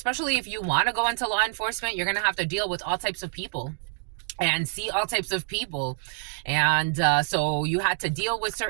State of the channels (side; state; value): left; silent; digital silence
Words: if you want to go into law enforcement, you're going to have to deal with all types of people and see all types of people. And so you had to deal with